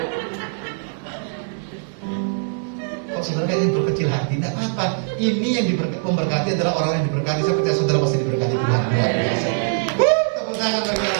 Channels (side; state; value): left; silent; digital silence